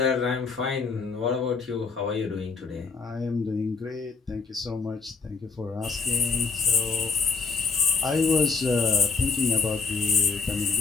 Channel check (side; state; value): right; quieter; 4.8 dB